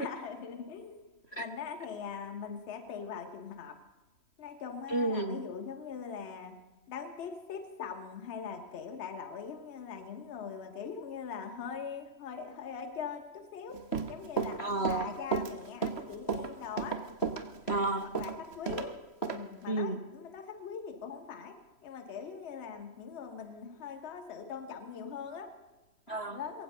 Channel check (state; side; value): late; right; 3.1 ms